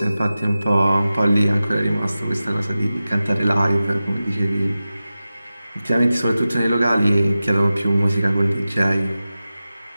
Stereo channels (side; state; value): both; inverted; correlation -0.95